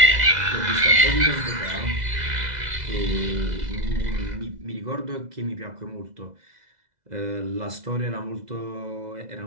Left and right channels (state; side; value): late; left; 2.0 ms